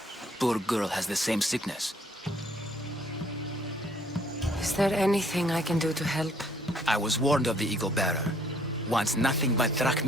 poor girl has the same sickness. Is there anything I can do to help? I was warned of the Eagle Bearer. Wants nothing but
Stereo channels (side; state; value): both; normal; correlation 0.63